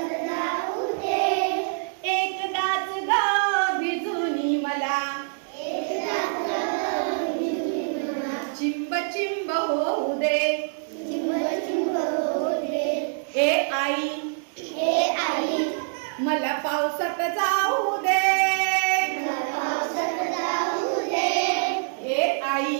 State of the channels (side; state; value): left; silent; digital silence